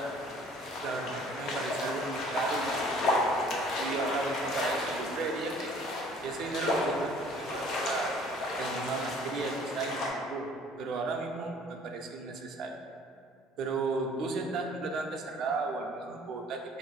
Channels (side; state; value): both; normal; correlation 0.54